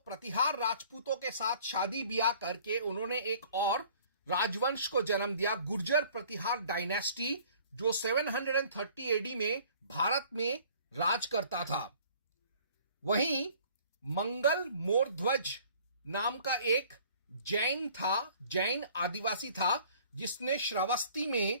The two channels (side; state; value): both; inverted; correlation -0.54